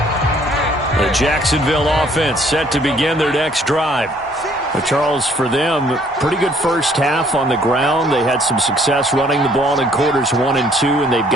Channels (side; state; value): both; normal; correlation 0.62